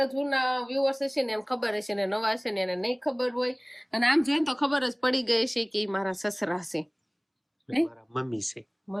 જૂના વ્યુઅર્સ હશે ને એમ ખબર હશે ને નવા હશે ને એને નહીં ખબર હોય અને આમ જોઈને તો ખબર જ પડી ગઈ છે કે ઈ મારા સસરા છે મારા મમ્મી છે.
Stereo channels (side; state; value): both; identical; correlation 1.00